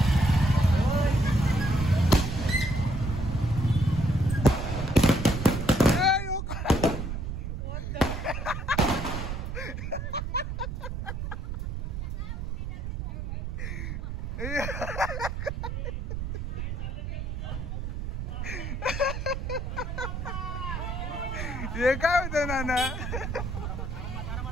हे काय होतं नाना?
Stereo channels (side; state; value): right; noise; rumble, 4 dB below the sound